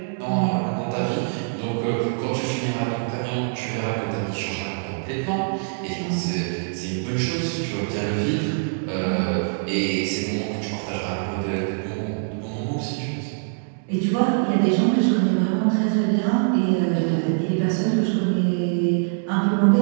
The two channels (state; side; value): silent; left; digital silence